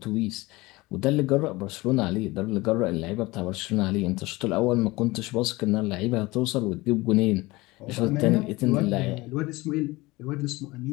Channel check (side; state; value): right; quieter; 21.4 dB